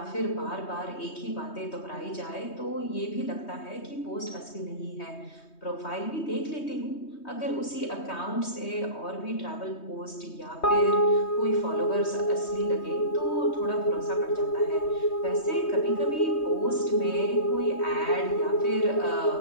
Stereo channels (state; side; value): late; right; 3.2 ms